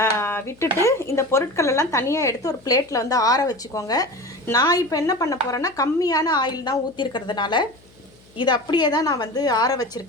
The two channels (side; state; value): left; noise; hum, 28 dB below the sound